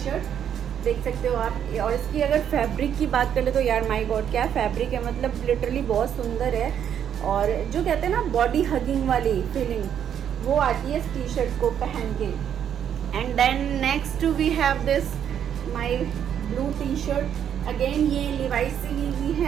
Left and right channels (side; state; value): left; quieter; 9.1 dB